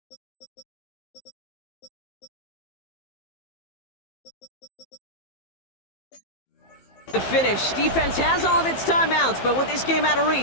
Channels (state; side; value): late; right; 15 ms